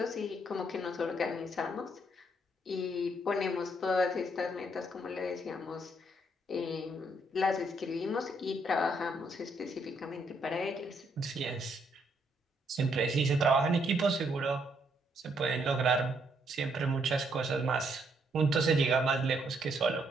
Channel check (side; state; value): both; normal; correlation 0.72